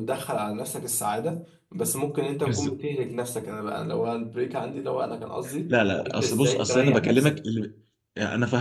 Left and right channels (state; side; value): identical; both; correlation 1.00